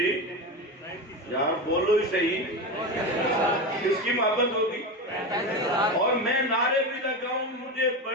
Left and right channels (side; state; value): both; normal; correlation 0.20